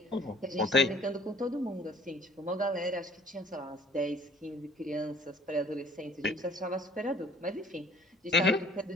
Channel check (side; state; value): both; normal; correlation 0.56